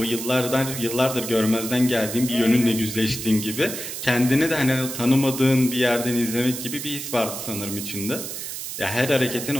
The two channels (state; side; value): noise; right; hiss, 7 dB below the sound